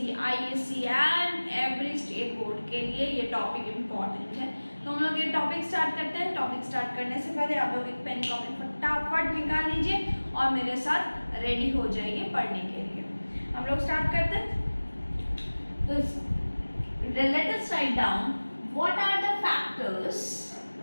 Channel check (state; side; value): inverted; both; correlation -1.00